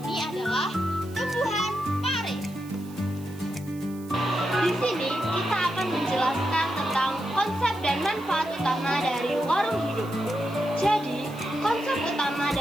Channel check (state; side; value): noise; right; hiss, 22 dB below the sound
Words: ini adalah tumbuhan pare. Di sini kita akan menjelaskan tentang konsep dan manfaat utama dari warung hidup. Jadi, konsep utama